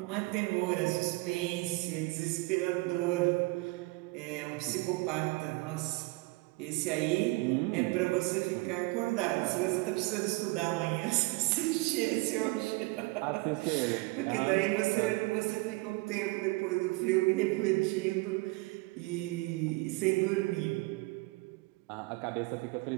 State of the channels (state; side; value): quieter; left; 24.1 dB